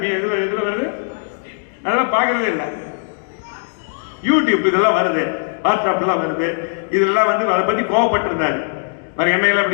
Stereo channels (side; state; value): right; silent; digital silence